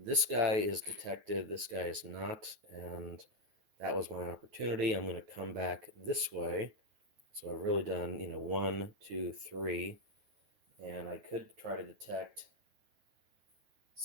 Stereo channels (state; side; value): late; left; 9.3 ms